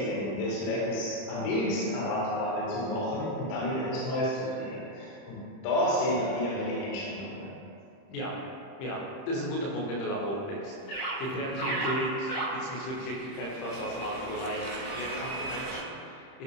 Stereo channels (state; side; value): late; right; 30 ms